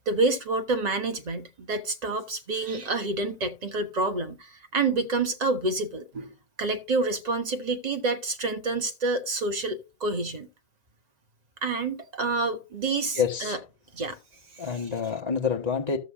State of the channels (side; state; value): left; late; 1.9 ms